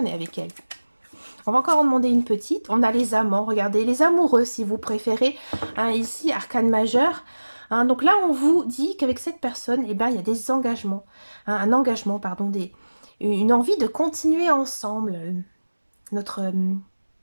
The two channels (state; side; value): inverted; both; correlation -1.00